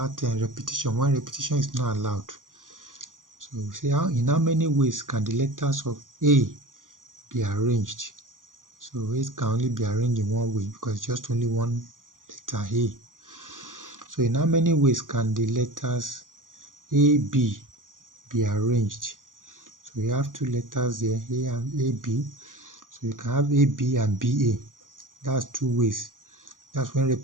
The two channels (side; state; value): left; late; 0.89 ms